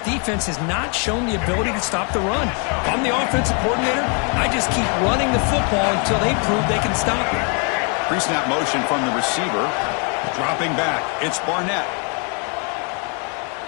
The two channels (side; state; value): right; quieter; 36.8 dB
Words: has not shown the ability to stop the run. If I'm the offensive coordinator, I just keep running the football until they prove they can stop it. Pre-snap motion from the receiver. Dropping back. It's Barnett.